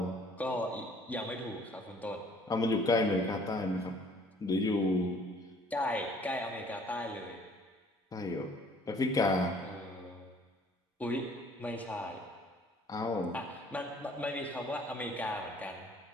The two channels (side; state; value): both; normal; correlation 0.57